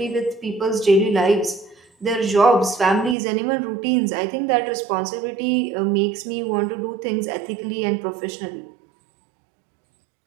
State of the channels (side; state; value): left; drops out; at 3.2 s